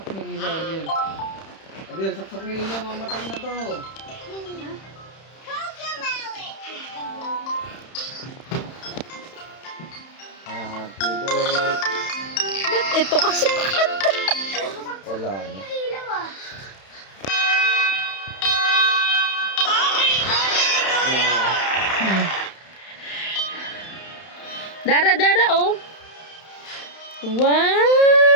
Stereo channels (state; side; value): late; right; 31 ms